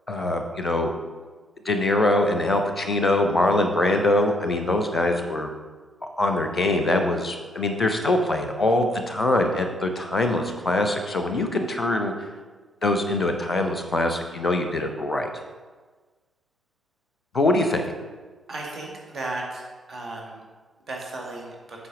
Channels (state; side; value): normal; both; correlation 0.68